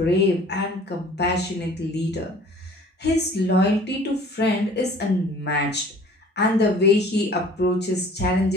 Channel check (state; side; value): normal; both; correlation 0.49